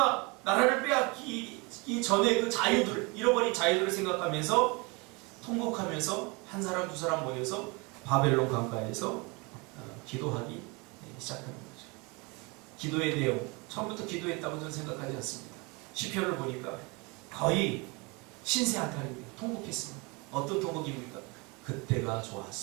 나라를 빼앗기 전에 그 자유들, 잃어버린 자유들을 생각하면서 통곡하면서 한 사람 두 사람 모여서 바벨론 강가에서 기도하기 시작하는 거죠. 기도의 내용, 처음부터 기도했다고 저는 생각하지 않습니다. 시편을 보니까 거의 신세한탄입니다. 통곡했습니다. 어떤 통곡입니까? 그때가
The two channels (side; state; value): left; quieter; 28.3 dB